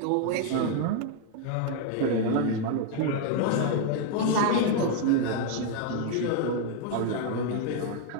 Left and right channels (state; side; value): different; both; correlation 0.00